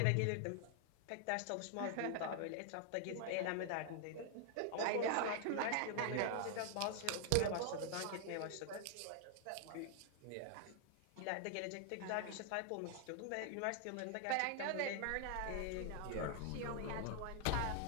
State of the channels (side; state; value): both; different; correlation 0.00